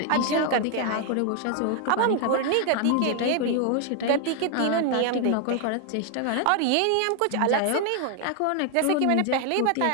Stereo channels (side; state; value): both; different; correlation 0.00